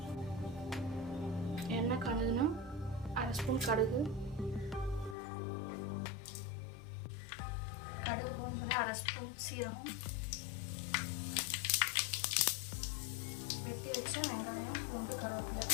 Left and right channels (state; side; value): drops out; right; at 5.2 s